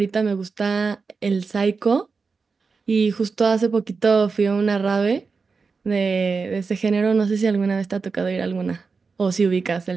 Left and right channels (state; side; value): quieter; left; 4.7 dB